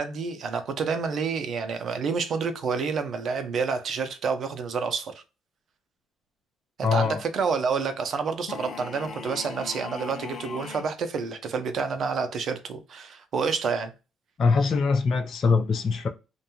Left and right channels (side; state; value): both; normal; correlation 0.72